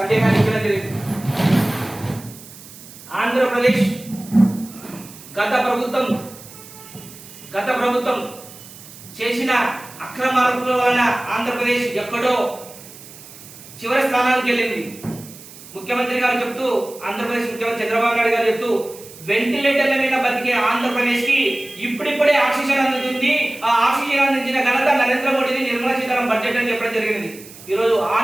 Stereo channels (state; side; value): noise; right; hiss, 18 dB below the sound